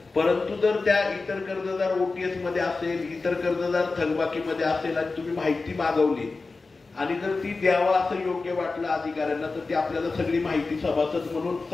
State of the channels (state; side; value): quieter; right; 3.8 dB